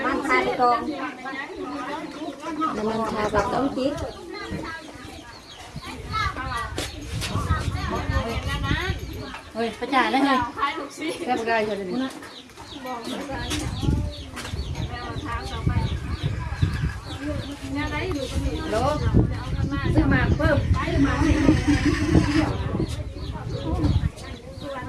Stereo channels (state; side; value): identical; both; correlation 1.00